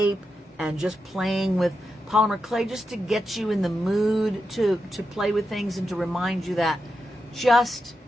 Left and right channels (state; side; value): normal; both; correlation 0.87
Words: and just playing with polymer clay just to get you in the mood to play with things and to remind you that just